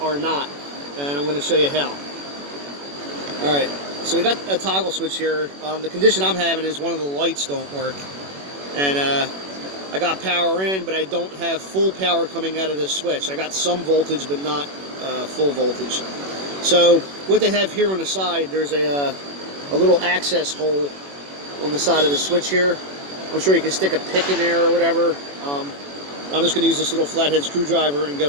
not, and I'm going to show you how. Alright, so we got a toggle switch here. The condition I'm having is one of the lights don't work, and I got power in, but I don't have full power coming out of this switch. I got some voltage, but not full voltage. So what they have here on the side, there's a little access hole on the side of the switch here. I'm sure you can stick a pick in there or whatever. I'm just going to use this little flathead screwdriver and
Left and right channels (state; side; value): late; left; 21 ms